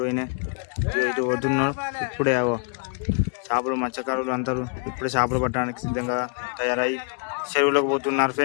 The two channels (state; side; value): quieter; right; 39.4 dB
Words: ఇది వదున్నారు. ఇప్పుడే చేపలు మత్స్యకారులు అందరూ ఇప్పుడే చేపలు పట్టడానికి సిద్ధంగా తయారై చెరువులోకి పోతున్నారు